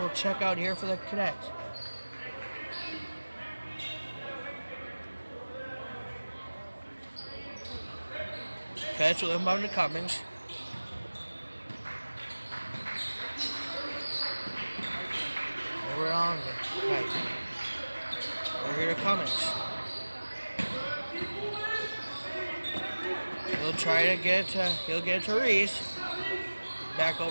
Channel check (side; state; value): both; inverted; correlation -1.00